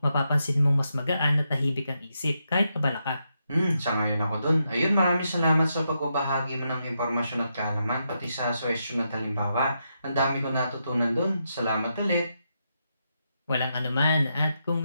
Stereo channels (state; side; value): inverted; both; correlation -0.83